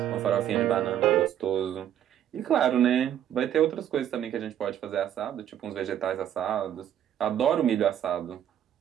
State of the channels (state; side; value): quieter; left; 10.5 dB